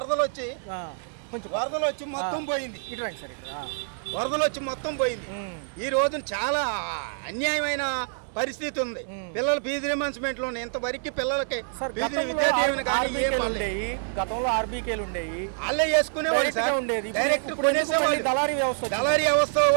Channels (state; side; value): silent; left; digital silence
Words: వచ్చి మొత్తం పోయింది. వరదలు వచ్చి మొత్తం పోయింది. ఈ రోజున చాలా అన్యాయమైన పరిస్థితి ఉంది. పిల్లల ఫీజు రియంబర్స్మెంట్ లో ఇంతవరకు పిల్లలకి గతంలో ఆర్బీకేలు ఉండేవి, వాళ్ళే వేసుకునేవాళ్ళు సార్. డైరెక్ట్ కొనేసేవాళ్ళు. దళారీ వ్యవస్థ